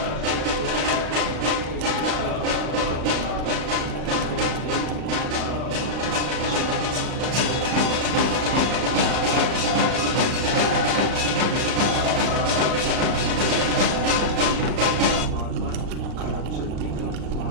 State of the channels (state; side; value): late; left; 38 ms